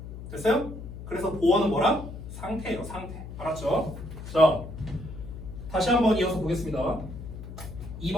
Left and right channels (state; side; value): noise; left; hum, 11 dB below the sound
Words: 됐어요? 그래서 보어는 뭐라? 상태예요, 상태. 알았죠? 자, 다시 한번 이어서 보겠습니다.